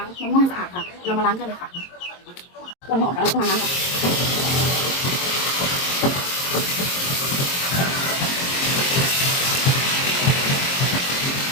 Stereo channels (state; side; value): late; right; 22 ms